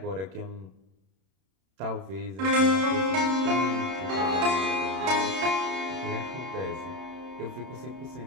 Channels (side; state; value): left; late; 31 ms